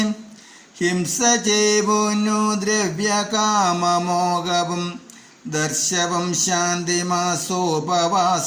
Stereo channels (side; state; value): both; identical; correlation 1.00